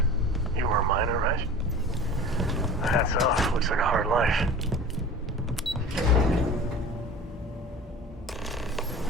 You were a miner, right? Hats off. Looks like a hard life.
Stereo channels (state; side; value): normal; both; correlation 0.38